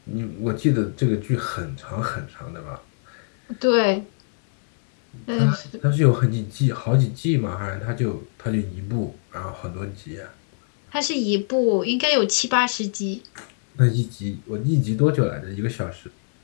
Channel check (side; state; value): right; silent; 63 dB below the other